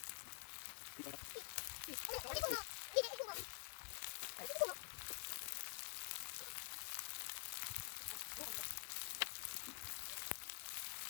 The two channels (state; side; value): silent; right; digital silence